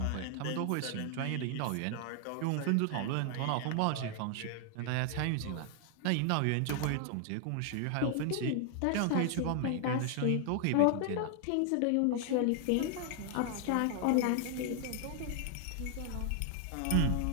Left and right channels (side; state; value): both; different; correlation 0.00